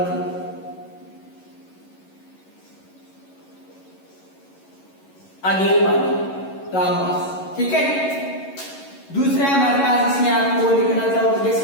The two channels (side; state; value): right; late; 11 ms